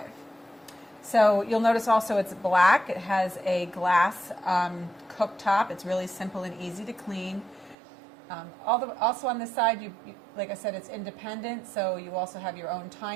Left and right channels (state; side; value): drops out; left; at 7.8 s